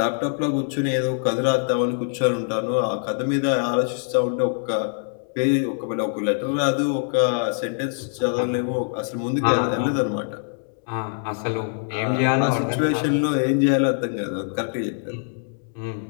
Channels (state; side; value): silent; right; digital silence